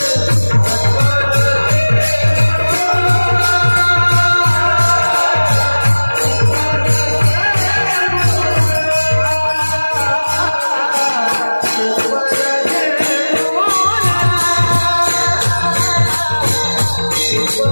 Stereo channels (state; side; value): inverted; both; correlation -1.00